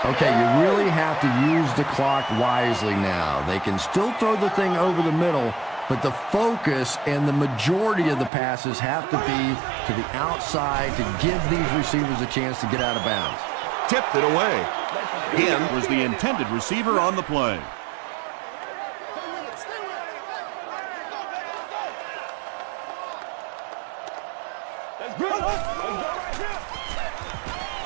Okay, you really have to use the clock wisely now. They can still throw the thing over the middle, but the focus and the majority of the passes have to be to the outside to give these receivers a chance to get out of bounds. Tipped it away. Again was the intended receiver on the play.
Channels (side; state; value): left; drops out; at 8.3 s